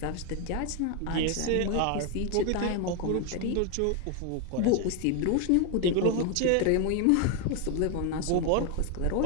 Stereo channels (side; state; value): both; different; correlation 0.01